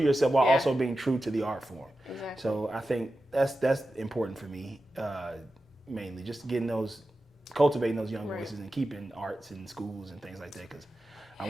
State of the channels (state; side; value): normal; both; correlation 0.92